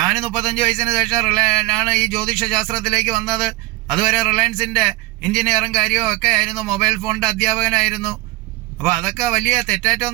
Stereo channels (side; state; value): left; quieter; 19.7 dB